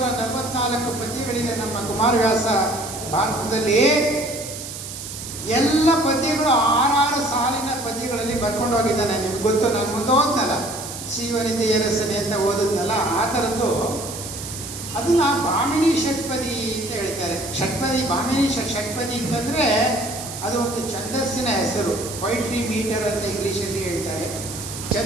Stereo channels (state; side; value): noise; right; hiss, 9 dB below the sound